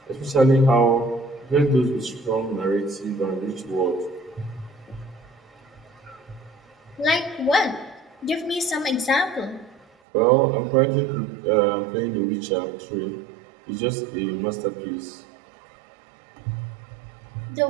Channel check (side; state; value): left; drops out; at 9.9 s